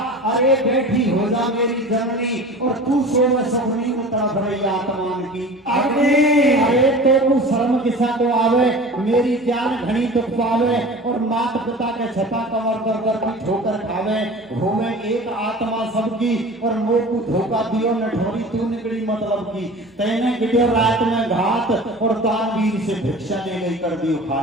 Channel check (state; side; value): normal; both; correlation 0.38